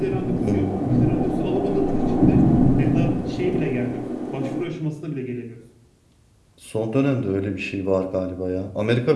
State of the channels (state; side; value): identical; both; correlation 1.00